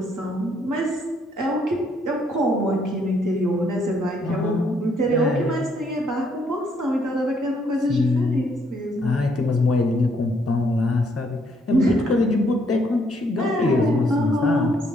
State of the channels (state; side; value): normal; both; correlation 0.70